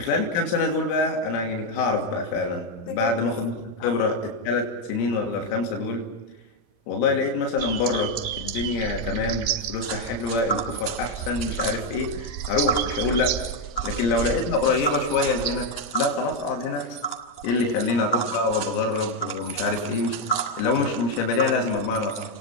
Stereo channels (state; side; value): late; right; 17 ms